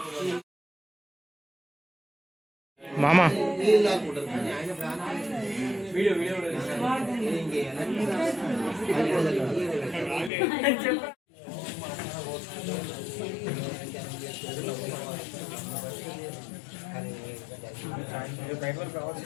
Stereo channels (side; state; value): right; drops out; at 10.3 s